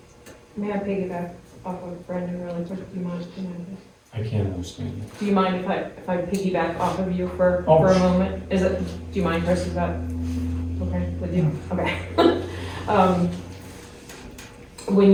May I piggyback off of Brendan really quick? Do you mind? I can't understand it. Do you mind if I piggyback off of you for Oh. a moment? Do you mind, Chris, is that okay with you? Okay.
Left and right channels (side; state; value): both; identical; correlation 1.00